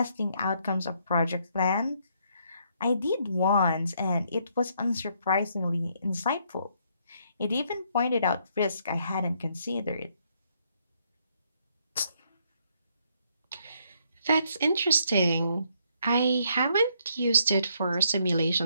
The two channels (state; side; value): inverted; both; correlation -0.71